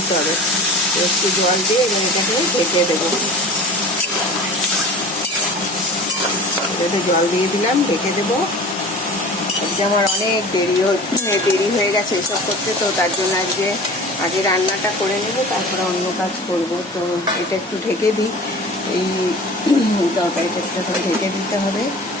হবে। তো একটু জল দিয়ে এবং এটাকে ঢেকে দেবো। এটাতে জল দিয়ে দিলাম, ঢেকে দেবো। আজকে আমার অনেক দেরি হয়ে গেছে এসব করতে। তো তার জন্য আগে রান্নাটা করে নেবো, তারপরে অন্য কাজ করব। তো এটা একটু ঢেকে দিই, এই তরকারিটা একটু ঢেকে দিতে হবে।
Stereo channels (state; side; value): normal; both; correlation 0.39